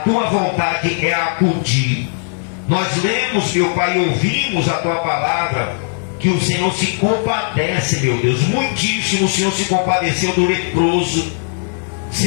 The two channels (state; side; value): silent; right; 64 dB below the other